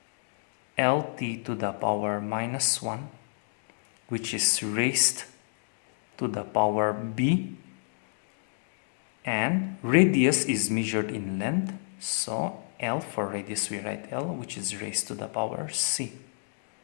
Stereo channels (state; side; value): silent; right; digital silence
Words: lt to the power minus 1, which is raised to the power b, and radius is measured in length, so L for radius we write L, which is raised to the power c.